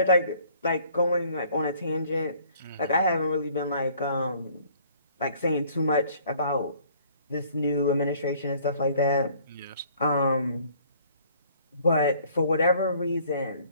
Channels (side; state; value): both; inverted; correlation -0.57